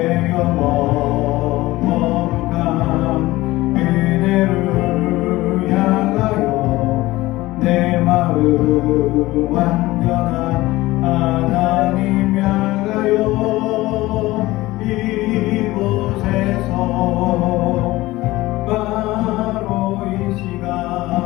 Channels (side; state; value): right; quieter; 18.5 dB